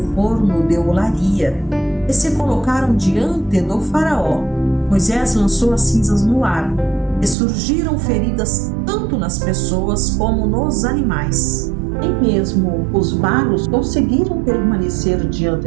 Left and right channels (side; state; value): left; drops out; at 7.4 s